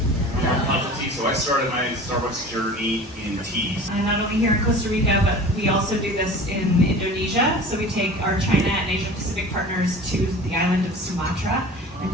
So I started my Starbucks journey in teas. Not only here in Costa Rica, but we also do this in Indonesia. So we take our China and Asia Pacific partners to the island of Sumatra and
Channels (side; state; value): both; normal; correlation 0.39